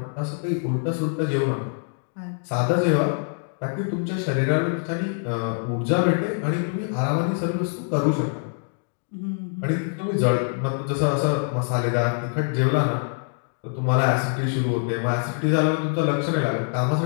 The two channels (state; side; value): silent; right; 62 dB below the other